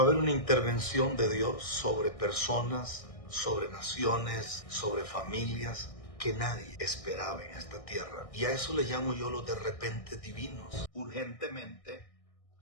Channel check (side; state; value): right; late; 1.6 ms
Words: a haber una intervención de Dios sobre personas, sobre naciones, sobre familias que nadie esperaba en esta tierra. Y a eso le llamo yo los de repente divinos. Urgentemente,